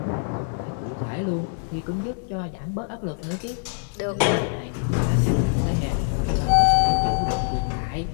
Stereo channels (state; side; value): silent; right; digital silence